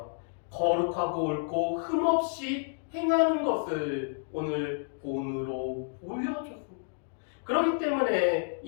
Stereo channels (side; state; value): right; silent; digital silence